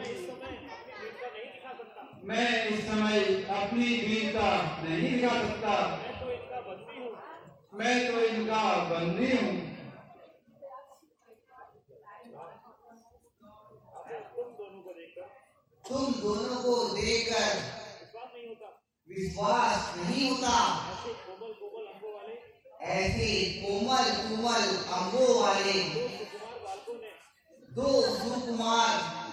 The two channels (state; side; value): identical; both; correlation 1.00